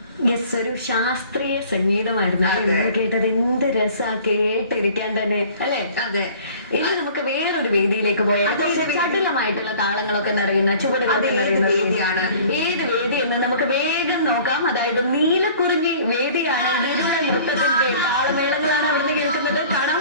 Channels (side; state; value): both; inverted; correlation -0.49